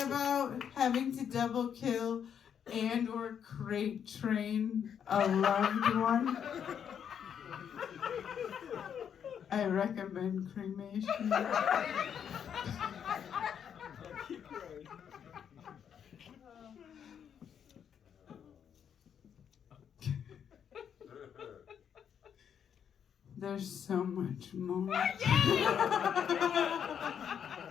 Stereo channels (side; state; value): right; quieter; 8.2 dB